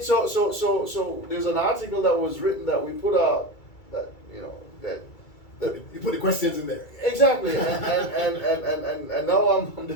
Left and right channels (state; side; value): late; right; 2.3 ms